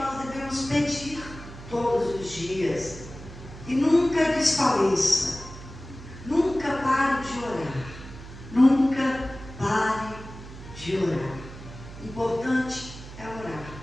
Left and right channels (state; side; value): noise; right; hum, 14 dB below the sound